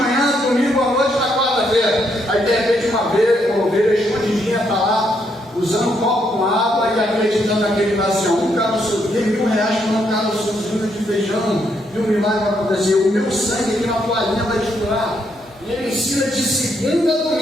domingo à noite, na quarta-feira. Aí de repente uma ovelha escondidinha está lá, usando um copo com água e acreditando naquele assim, um caroço, tem R$1.000 para um caroçozinho de feijão, e um milagre vai acontecer. O meu sangue aqui na toalhinha vai estourar. E ele ensina de segunda a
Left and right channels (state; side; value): normal; both; correlation 0.75